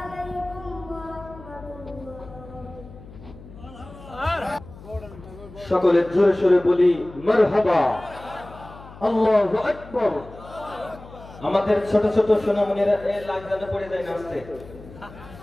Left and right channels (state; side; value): noise; left; hum, 18 dB below the sound